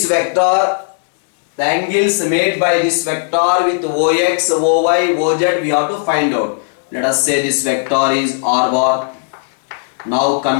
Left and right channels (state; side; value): silent; right; 70 dB below the other